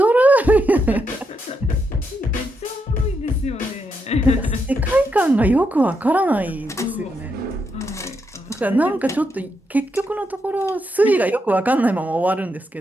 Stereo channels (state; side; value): normal; both; correlation 0.81